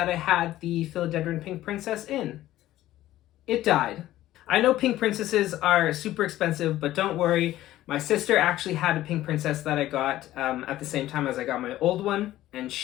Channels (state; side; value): quieter; right; 14.6 dB